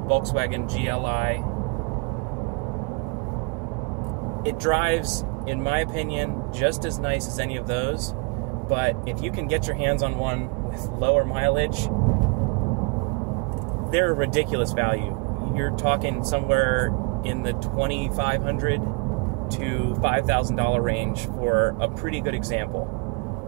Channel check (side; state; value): left; quieter; 33.7 dB